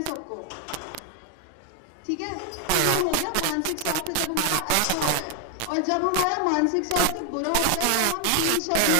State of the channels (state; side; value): different; both; correlation 0.01